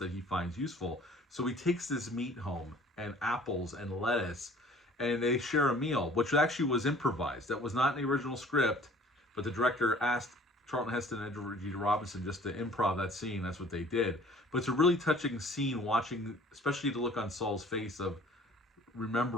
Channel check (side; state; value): both; normal; correlation 0.51